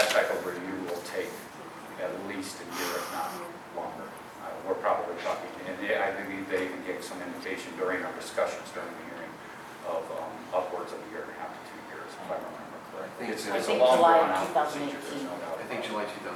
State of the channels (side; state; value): both; identical; correlation 1.00